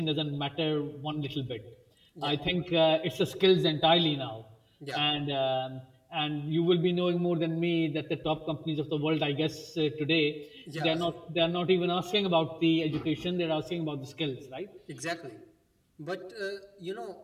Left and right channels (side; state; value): both; identical; correlation 1.00